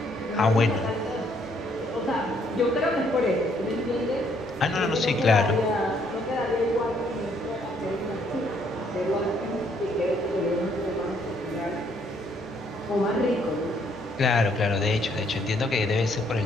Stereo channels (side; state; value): both; normal; correlation 0.68